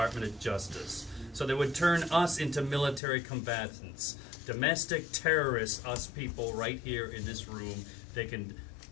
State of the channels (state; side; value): drops out; right; at 3.0 s